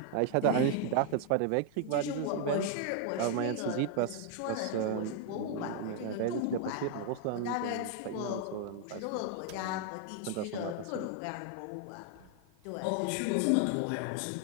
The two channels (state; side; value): different; both; correlation 0.00